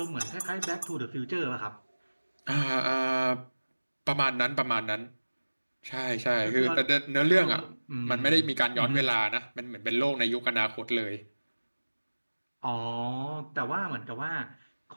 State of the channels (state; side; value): inverted; both; correlation -1.00